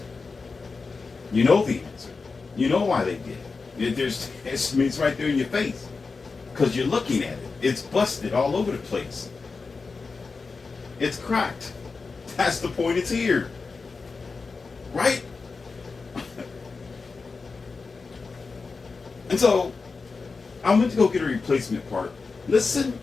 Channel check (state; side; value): quieter; right; 4.4 dB